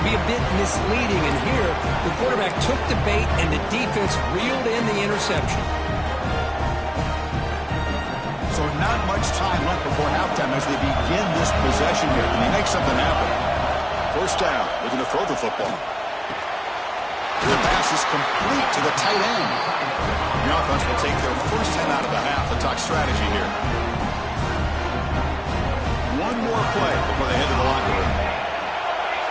be a bit misleading. And here, the quarterback took the bait, and the defense reeled in the interception. So not much time left before halftime as they begin this possession here. Can they make something happen? First down, looking to throw the football. The pass is complete to the tight end. The offense will take their first 10 out of the half. They'll talk strategy here. One more play before they head to the locker room.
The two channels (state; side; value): identical; both; correlation 1.00